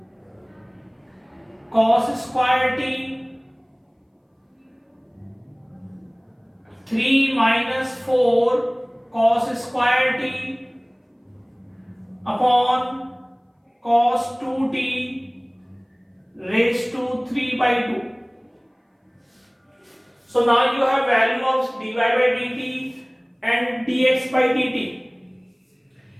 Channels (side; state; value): both; identical; correlation 1.00